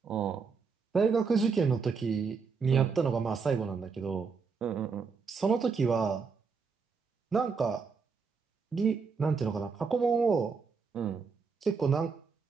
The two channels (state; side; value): quieter; left; 5.3 dB